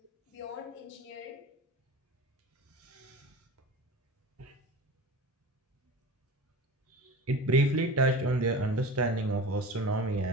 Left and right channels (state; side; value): normal; both; correlation 0.34